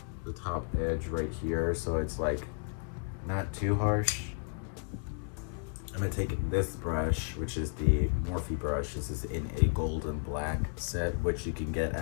the top edge right here so it's like not too harsh. I'm gonna take this brush, which is the Morphe brush. This is in a golden black set, which you can get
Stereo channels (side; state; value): right; quieter; 37.9 dB